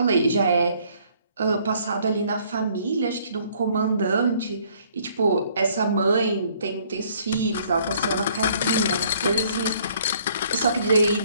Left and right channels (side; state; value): both; inverted; correlation -0.62